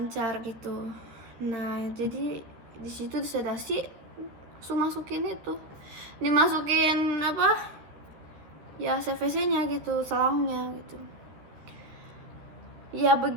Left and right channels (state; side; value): late; left; 13 ms